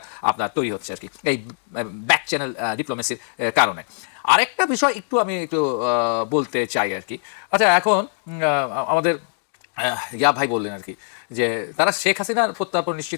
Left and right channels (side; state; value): right; silent; digital silence